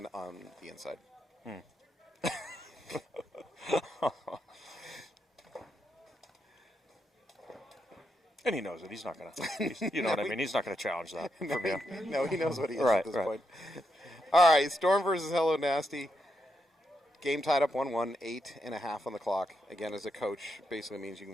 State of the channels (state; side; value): normal; both; correlation 0.81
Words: on the inside. And he knows it. He's not going to, you know what I mean? He's not going to challenge that from you. No, he knows what he is Right, at this right. point. All right, Storm versus Hello Nasty. Game tied up 1-1, 8.5 on the clock. Again, as a coach, basically means you